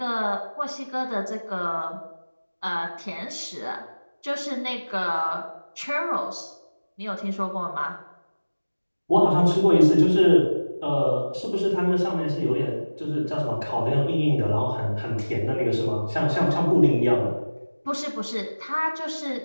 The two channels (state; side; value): inverted; both; correlation -1.00